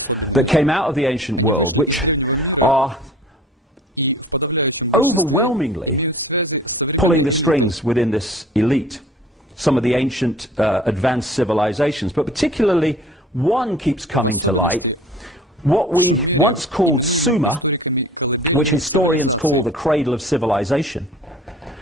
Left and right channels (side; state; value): both; normal; correlation 0.47